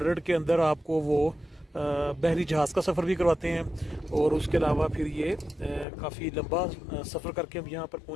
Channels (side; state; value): right; drops out; at 5.9 s